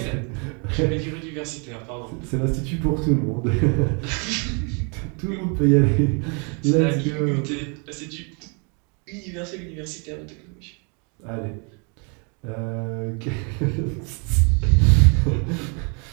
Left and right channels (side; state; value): left; quieter; 36.0 dB